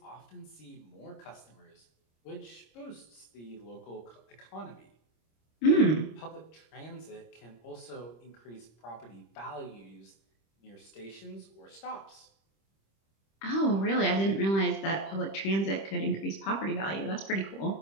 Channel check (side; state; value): right; late; 26 ms